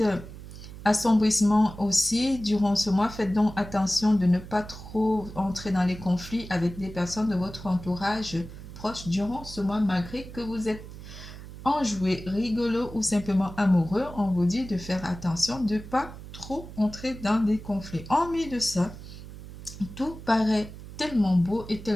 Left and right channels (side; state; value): right; noise; hum, 14 dB below the sound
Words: assombrissement aussi durant ce mois. Faites donc attention de ne pas trop entrer dans les conflits avec des personnes de votre entourage proche durant ce mois, malgré que vous êtes enjoué, rigolo ou simplement amoureux, on vous dit de faire attention, de ne pas trop entrer dans des conflits. En plus de ça, tout paraît tellement beau et